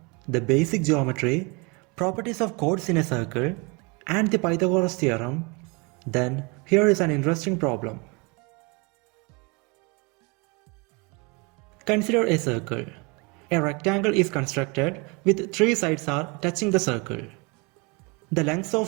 the basic geometry, properties of chords in a circle and the Pythagoras theorem, then here is an interesting problem. Consider a circle. A rectangle is constructed with three sides are touching the circle. The lengths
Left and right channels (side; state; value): left; quieter; 29.3 dB